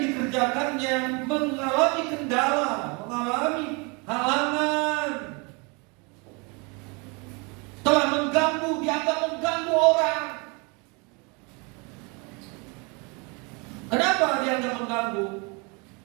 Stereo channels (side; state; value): left; quieter; 30.8 dB